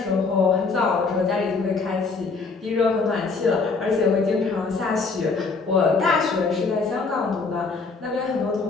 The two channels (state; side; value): quieter; right; 4.3 dB